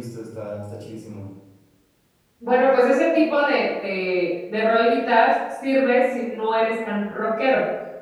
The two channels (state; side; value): identical; both; correlation 1.00